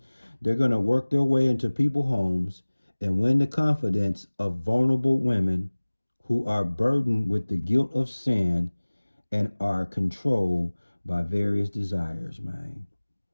they're going to work their way into people's homes and win the confidence of vulnerable women who are burdened with the guilt of sin and are controlled by various desires, man.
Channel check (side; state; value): both; inverted; correlation -1.00